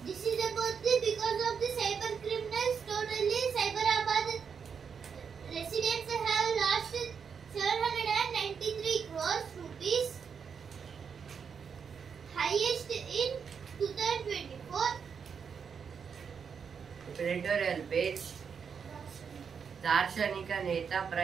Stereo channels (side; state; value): left; quieter; 6.5 dB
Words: This is about because of the cyber criminals. Totally, Cyberabad residents have lost 793 crores rupees, highest in 2024. Editorial page. దార్శనిక నేత,